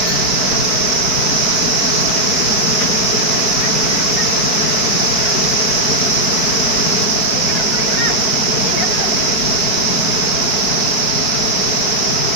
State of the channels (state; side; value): late; right; 5.1 ms